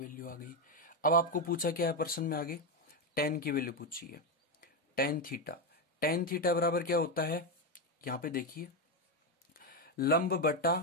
आ गई। अब आपको पूछा क्या है प्रश्न में आगे, टेन की वैल्यू पूछी है। टेन थीटा बराबर क्या होता है, यहां पे देखिए लंब बटा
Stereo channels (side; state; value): both; normal; correlation 0.07